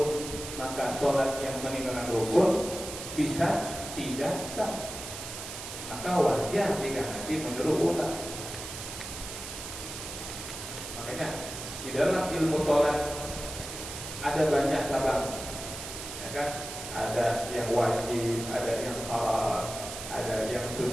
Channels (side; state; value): right; noise; hiss, 9 dB below the sound